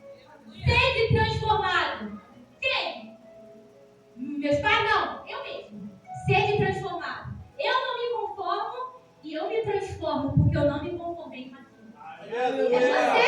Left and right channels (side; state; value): both; identical; correlation 1.00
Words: Sede transformado. Quem? Meus pais, não. Eu mesmo. Sede transformado. Eu não me conformo e eu me transformo, porque eu não me conformei com aquilo. É você que